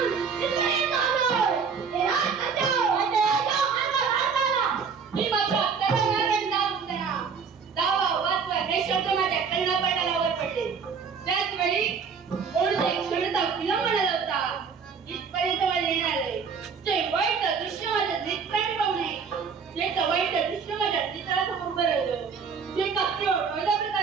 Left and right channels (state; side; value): quieter; left; 5.9 dB